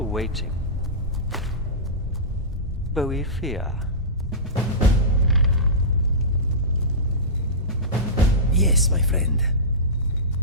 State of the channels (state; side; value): normal; both; correlation -0.19